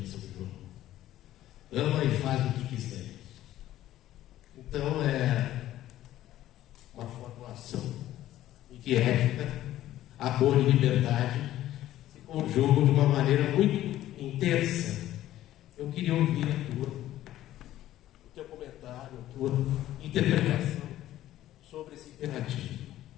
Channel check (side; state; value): right; quieter; 13.7 dB